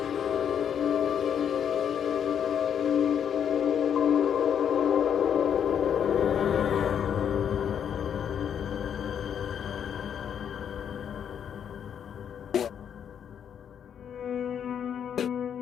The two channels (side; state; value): right; quieter; 8.4 dB